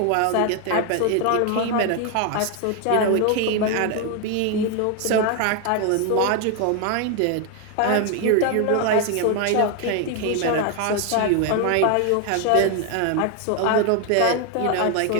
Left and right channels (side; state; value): both; different; correlation 0.01